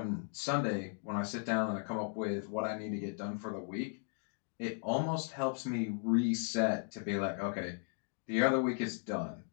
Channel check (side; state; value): right; silent; 53 dB below the other